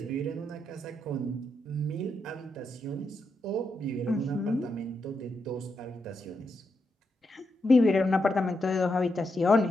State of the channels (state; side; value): normal; both; correlation 0.83